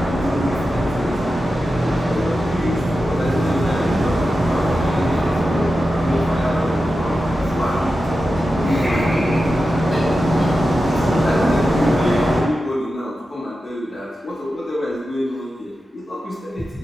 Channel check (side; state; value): both; normal; correlation 0.91